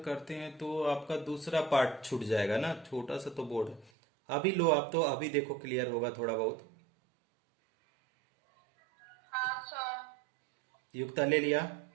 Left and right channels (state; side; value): drops out; left; at 3.9 s